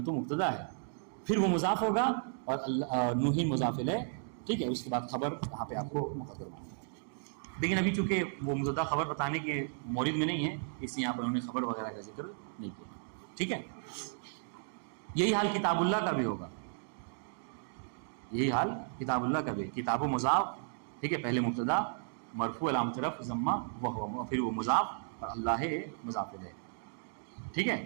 مبتدا ہے، پھر وہ مضاف ہوگا اور نوح مضاف الیہ. ٹھیک ہے، اس کے بعد خبر وہاں پہ آپ کو مقدر ماننا ہے. لیکن ابھی چونکہ وہ مبتدا خبر بتانے کے مورد میں نہیں ہے، اس لیے یہاں پر انہوں نے خبر وغیرہ کا ذکر نہیں کیا. ٹھیک ہے، یہی حال کتاب اللہ کا بھی ہوگا. یہی حال کتاب اللہ کا بھی، کتاب و مضاف. ٹھیک ہے، پہلے مبتدا مرفوع علامت رفع ضمہ وہ، پھر وہ مضاف اور اللہ مضاف الیہ. ٹھیک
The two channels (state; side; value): silent; left; digital silence